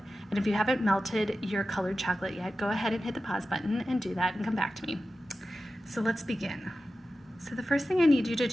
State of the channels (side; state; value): both; normal; correlation 0.94